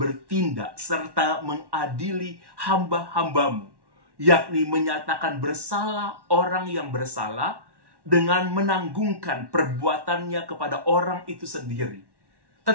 serta mengadili hamba-hamba-Mu, yakni menyatakan bersalah orang yang bersalah dengan menanggungkan perbuatannya kepada orang itu sendiri,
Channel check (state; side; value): late; left; 1.1 ms